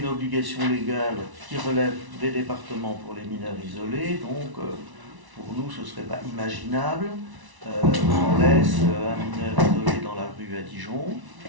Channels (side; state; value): left; late; 1.1 ms